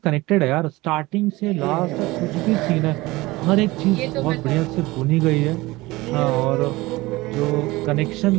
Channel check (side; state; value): left; quieter; 20.4 dB